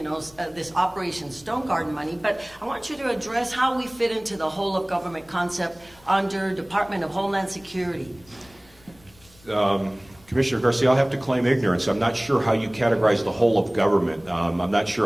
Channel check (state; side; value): noise; left; rumble, 27 dB below the sound